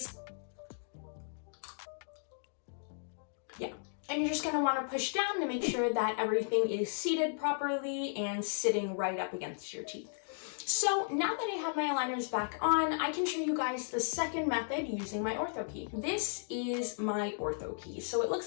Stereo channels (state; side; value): silent; right; digital silence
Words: Yeah. And you're just going to want to push down to make sure that everything is seated properly and sitting right up against your teeth. So now that I have my aligners back on, I can show you guys the second method using my Ortho Key. This is my Ortho Key. So it